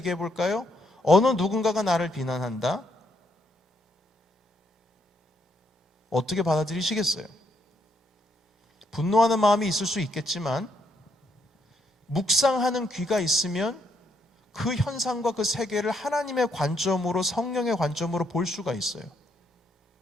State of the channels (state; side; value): normal; both; correlation 0.75